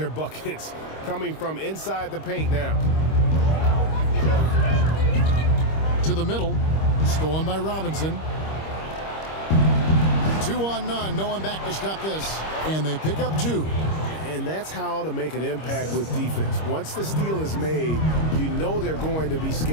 buckets coming from inside the paint now. To the middle, stolen by Robinson. 2 on none, no one back to stop this. And they pick up 2. And that's how to make an impact with defense. Once the steal is made, you know they're going to be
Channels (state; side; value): late; right; 25 ms